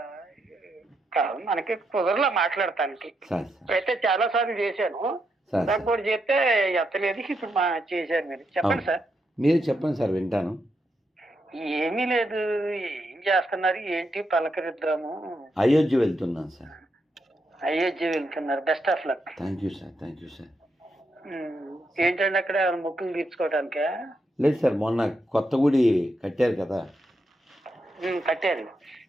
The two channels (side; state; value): both; normal; correlation 0.82